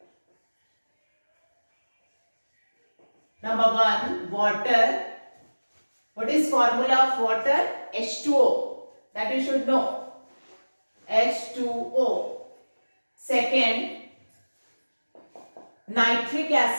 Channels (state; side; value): inverted; both; correlation -1.00